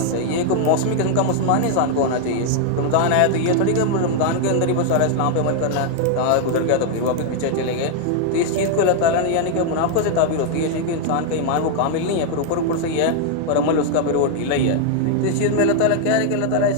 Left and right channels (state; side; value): different; both; correlation 0.00